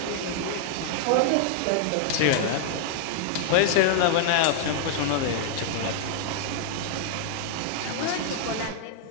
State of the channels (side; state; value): both; different; correlation 0.00